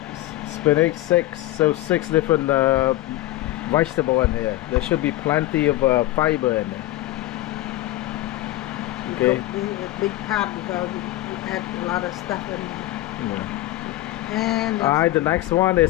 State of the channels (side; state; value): right; quieter; 16.4 dB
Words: spinach, six. So 6 different vegetable in here. There should be plenty of fiber in there. Okay. A big pot because you add a lot of stuff in there. Yeah. And All right, the next one